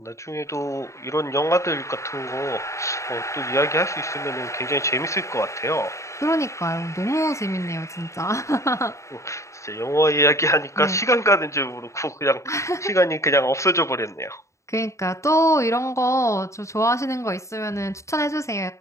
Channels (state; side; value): late; right; 0.14 ms